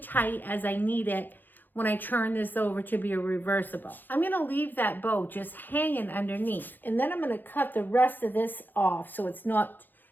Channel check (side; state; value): right; late; 0.089 ms